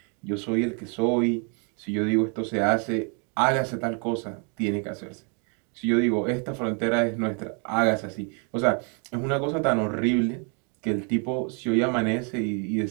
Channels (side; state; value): left; quieter; 38.2 dB